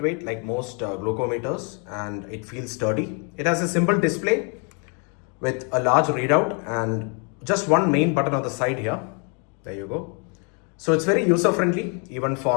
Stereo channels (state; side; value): quieter; right; 37.2 dB